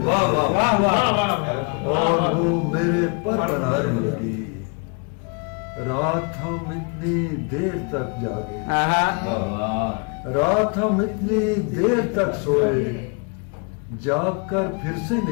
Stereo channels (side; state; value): right; quieter; 34.9 dB